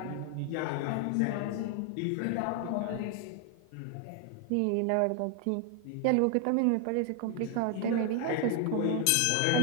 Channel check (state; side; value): different; both; correlation 0.00